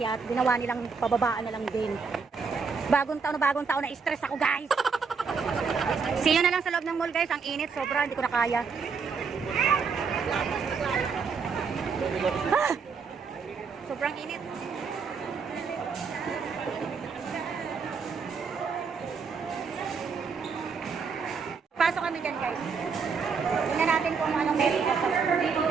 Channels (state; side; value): quieter; left; 5.4 dB